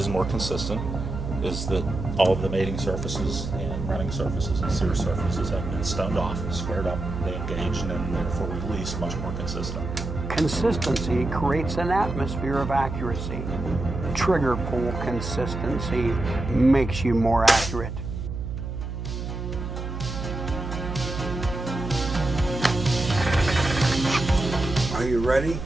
more consistent is that all of the mating surfaces and running surfaces and sear surfaces have been stoned off, squared up, they engage, and then therefore release much more consistent. Consistency creates an atmosphere of accuracy. Trigger pull consistency makes you more accurate. Are you ready?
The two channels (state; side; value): noise; right; hum, 6 dB below the sound